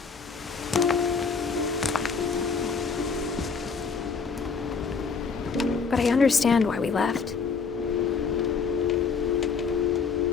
But I understand why we left.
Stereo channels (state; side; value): quieter; right; 5.3 dB